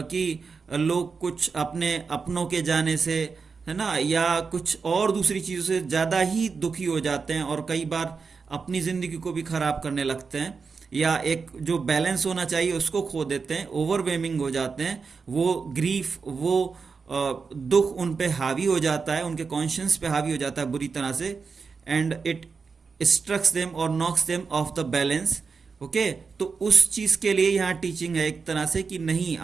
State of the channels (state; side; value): quieter; left; 5.1 dB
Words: लोग कुछ अपने अपनों के जाने से, है ना, या कुछ और दूसरी चीज़ों से ज़्यादा ही दुखी हो जाते हैं, और कई बार अपनी ज़िंदगी को भी ख़राब करने लगते हैं, या एक जो बैलेंस होना चाहिए उसको खो देते हैं, ओवरवेमिंग हो जाते हैं। वो ग्रीफ, वो दुख उन पे हावी हो जाता है, उनके कॉन्शियंस पे हावी हो जाता है बुरी तरह से, एंड इट स्ट्रक्स देम और knocks them off the balance. Okay, तो उस चीज़ के लिए यहाँ टीचिंग है एक तरह से कि नहीं,